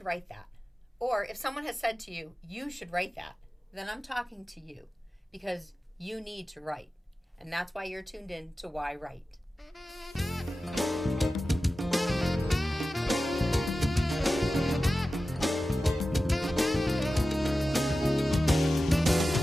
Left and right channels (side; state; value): both; normal; correlation 0.94